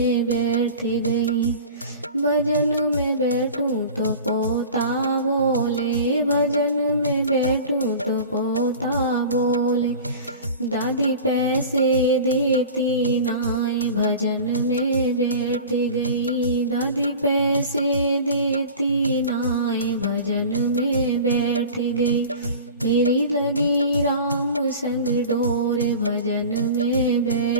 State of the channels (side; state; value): both; inverted; correlation -0.37